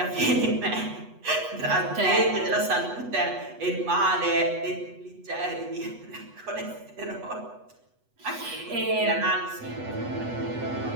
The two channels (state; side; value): late; left; 8.1 ms